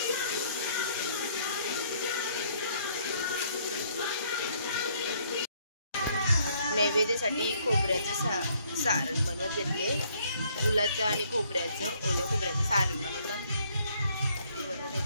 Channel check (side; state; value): both; inverted; correlation -0.65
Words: नैवेद्यासाठी खोबऱ्याचं सारण बनवत घेतले. गुलाचं आणि खोबऱ्याचं, ओल्या खोबऱ्याचं सारण बनवतात ते बनवून